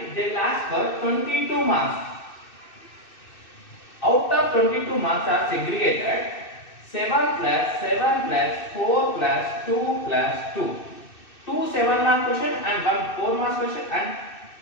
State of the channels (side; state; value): right; late; 2.6 ms